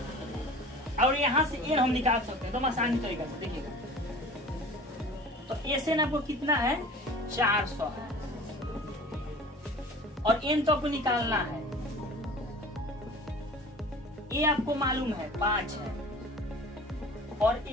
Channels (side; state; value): both; normal; correlation 0.42